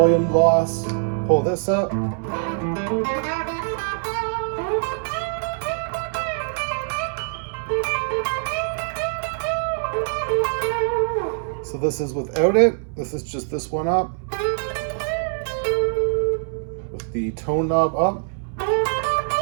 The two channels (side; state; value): left; silent; 63 dB below the other